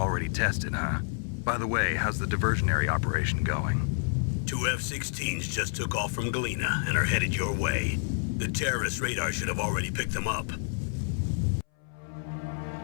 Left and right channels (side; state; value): right; silent; 59 dB below the other